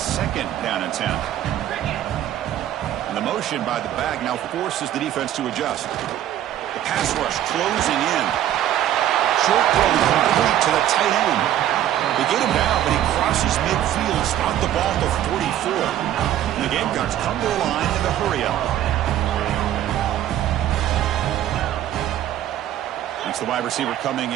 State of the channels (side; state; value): left; quieter; 12.0 dB